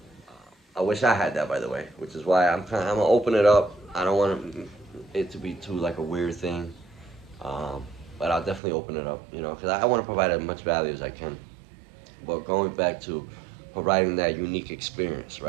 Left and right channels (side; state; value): left; drops out; at 8.6 s